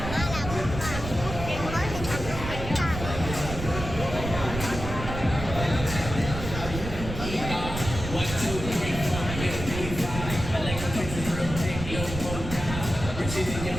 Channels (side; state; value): right; noise; rumble, 7 dB below the sound